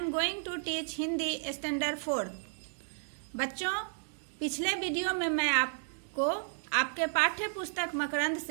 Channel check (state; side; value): silent; left; digital silence